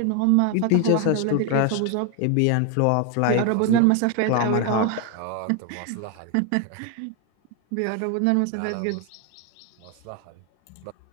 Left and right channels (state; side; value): different; both; correlation 0.01